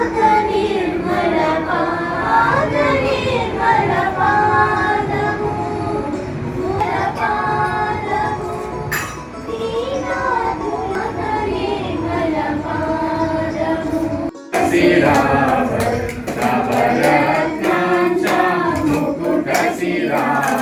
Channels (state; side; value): identical; both; correlation 1.00